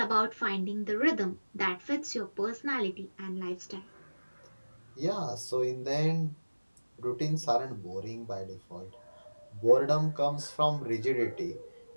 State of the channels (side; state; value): both; inverted; correlation -1.00